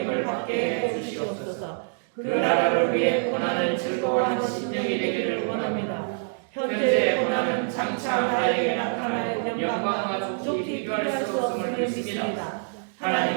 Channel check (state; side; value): silent; left; digital silence